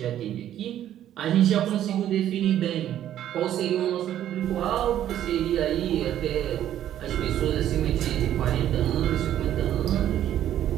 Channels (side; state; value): left; quieter; 11.5 dB